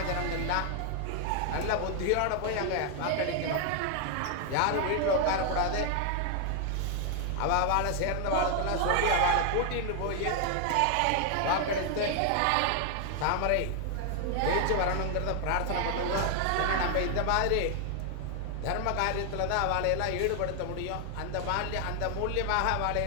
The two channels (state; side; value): different; both; correlation 0.00